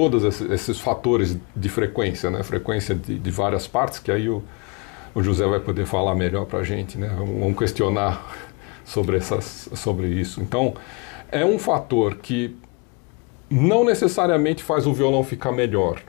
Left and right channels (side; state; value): right; quieter; 31.5 dB